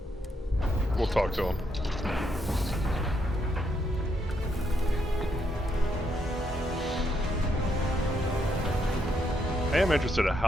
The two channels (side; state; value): both; normal; correlation 0.77